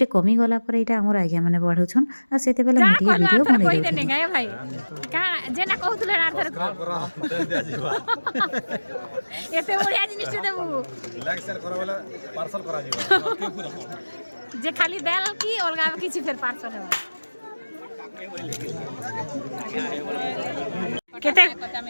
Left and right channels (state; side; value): inverted; both; correlation -1.00